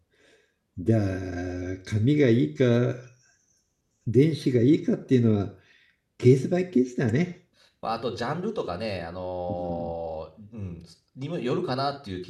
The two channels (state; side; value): identical; both; correlation 1.00